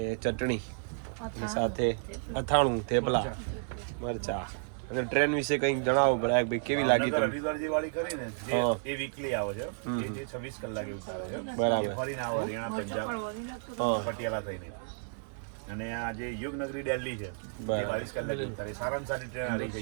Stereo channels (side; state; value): left; silent; 56 dB below the other